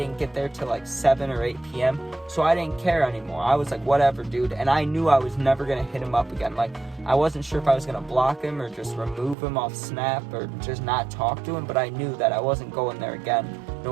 get there till like 7 or 8 p.m. So I didn't care anymore. I was like, whatever, dude. And I knew I was never going to hit him up again. Like, I wasn't sure if I was going to block him or just remove him off Snap or just not talk to him. But I knew that I wasn't going there again,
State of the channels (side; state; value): left; drops out; at 9.3 s